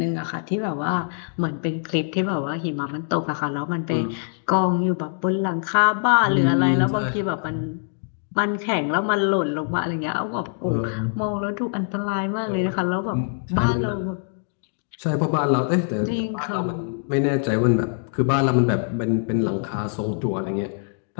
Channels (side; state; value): right; silent; digital silence